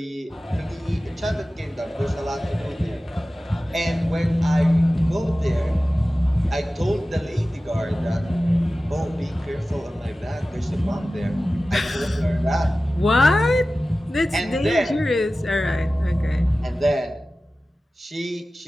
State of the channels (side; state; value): both; normal; correlation 0.96